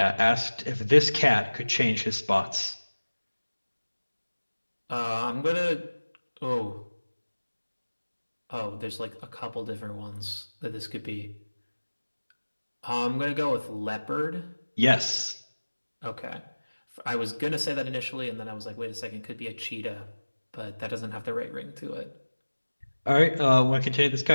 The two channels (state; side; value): inverted; both; correlation -1.00